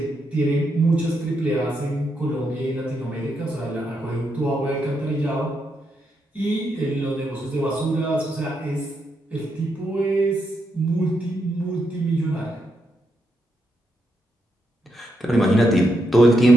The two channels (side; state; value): both; normal; correlation 0.81